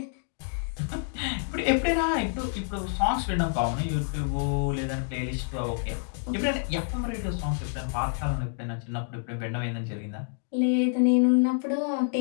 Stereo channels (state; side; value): silent; right; digital silence